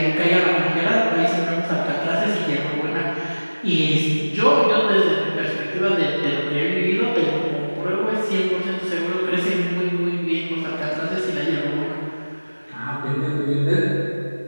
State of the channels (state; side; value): inverted; both; correlation -1.00